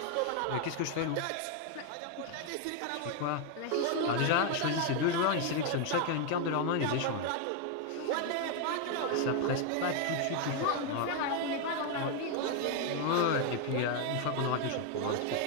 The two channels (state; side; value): different; both; correlation 0.01